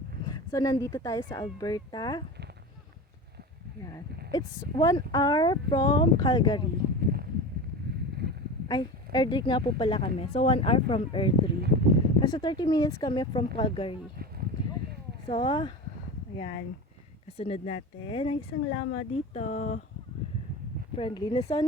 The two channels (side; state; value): both; normal; correlation 0.29